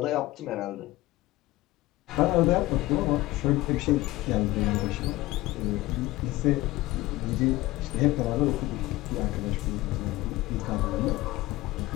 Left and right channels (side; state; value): right; quieter; 18.1 dB